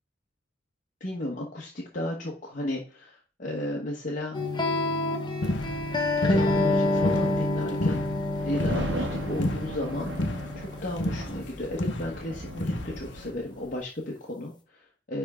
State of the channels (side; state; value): both; normal; correlation 0.62